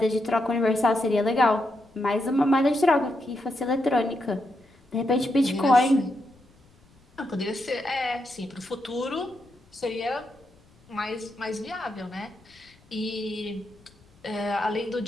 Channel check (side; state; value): left; noise; rumble, 29 dB below the sound